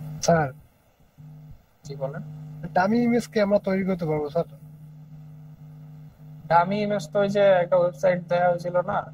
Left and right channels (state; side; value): identical; both; correlation 1.00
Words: স্যার জি বলেন। ডামি ইমেজ কি আমরা তৈরি করতে পারবো স্যার? আমি ইমেজ তো ওই যে একটা ওয়েবসাইট দেওয়া হয়েছিল না,